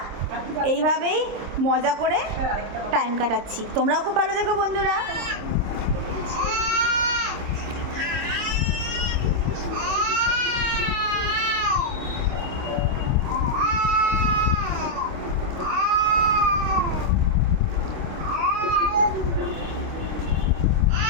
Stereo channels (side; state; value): left; late; 26 ms